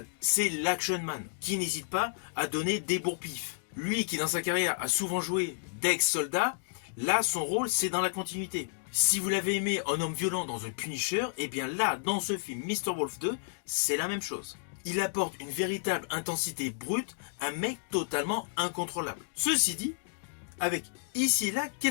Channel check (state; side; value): silent; right; digital silence